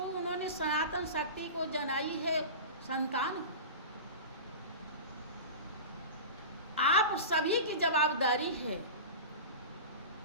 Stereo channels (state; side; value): inverted; both; correlation -0.31